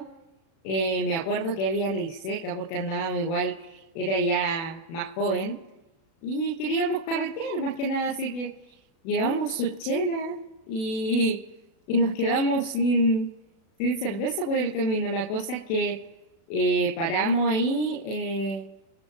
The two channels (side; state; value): right; late; 37 ms